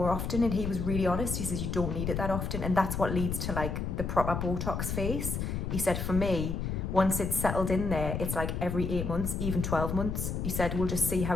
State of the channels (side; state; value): left; noise; rumble, 2 dB below the sound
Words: often. And he was really honest. He says you don't need it that often. And that's what leads to like the proper Botox face. He said for me, once it's settled in there, it's like every 8 months, even 12 months. He said, we'll just see how